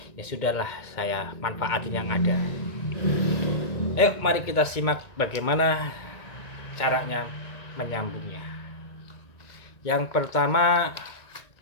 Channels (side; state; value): right; late; 1.9 ms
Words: ya sudahlah, saya manfaatin yang ada. Ayo mari kita simak bagaimana caranya menyambungnya. Yang pertama,